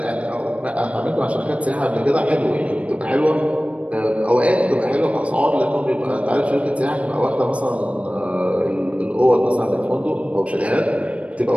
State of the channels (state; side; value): late; left; 0.064 ms